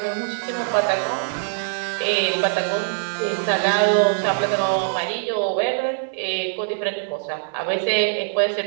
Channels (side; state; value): left; silent; digital silence